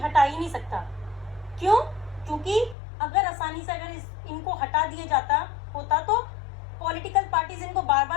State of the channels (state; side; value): drops out; right; at 2.8 s